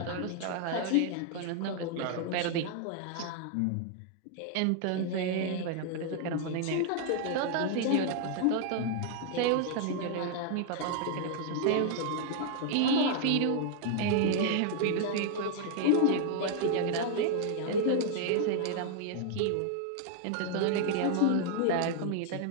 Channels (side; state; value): both; different; correlation 0.00